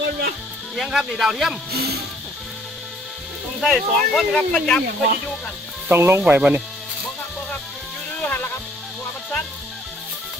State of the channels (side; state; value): both; normal; correlation 0.61